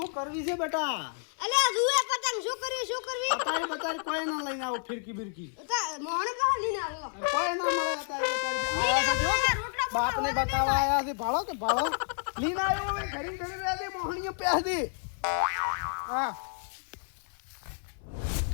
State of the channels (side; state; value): right; silent; 58 dB below the other